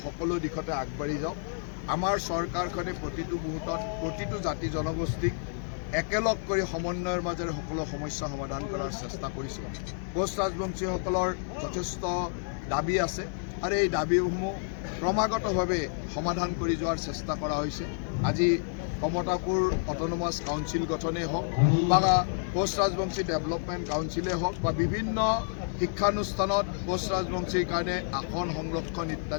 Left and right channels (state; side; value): silent; right; digital silence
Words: সকলো দিশতে আগবাঢ়ি যাওক। আমাৰ চৰকাৰখনে প্ৰতিটো মুহূৰ্তত প্ৰতিটো জাতি জনগোষ্ঠীক একেলগ কৰি সমন্বয়ৰ মাজেৰে সকলো সমস্যা সমাধান কৰাৰ চেষ্টা কৰিছে। কোচ ৰাজবংশীসকলৰ যথেষ্ট দাবী আছে আৰু এই দাবীসমূহ ক্ৰমাগতভাৱে সমাধান কৰি যোৱাৰ চেষ্টা কৰা হৈছে। আজি কমতাপুৰ অট'নমাছ কাউন্সিল গঠনেই হওক বা কোচ ৰাজবংশী ডেভেলপমেণ্ট কাউন্সিলেই হওক বা বিভিন্ন শিক্ষানুষ্ঠানত কোচ ৰাজবংশীৰ কাৰণে আসন সংৰক্ষণ